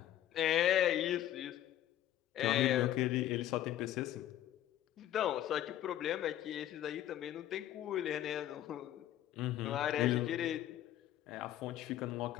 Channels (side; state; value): right; quieter; 12.3 dB